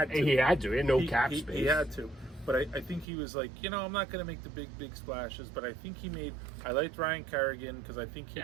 to. He had to. He had no cap space. He had to. But I think he was like, I'm not going to make the big splashes. But I think I liked Ryan Kerrigan because I think he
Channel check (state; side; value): drops out; left; at 3.1 s